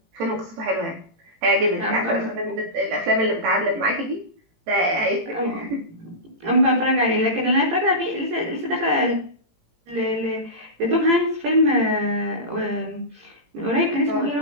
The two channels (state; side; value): late; left; 18 ms